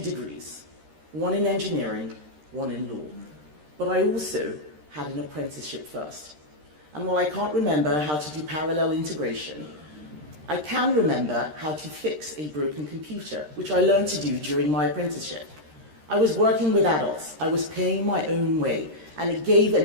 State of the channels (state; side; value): late; left; 13 ms